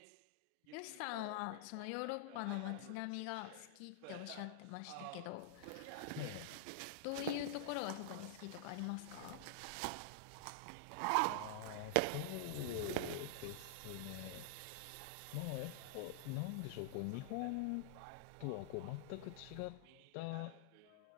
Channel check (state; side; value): different; both; correlation -0.01